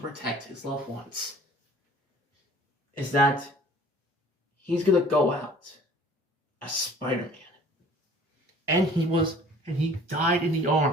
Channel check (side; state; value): both; normal; correlation 0.51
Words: protect his loved ones. Is that he's going to go out as Spider-Man. And he died in the